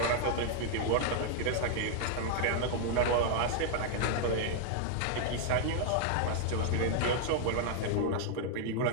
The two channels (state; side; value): different; both; correlation -0.01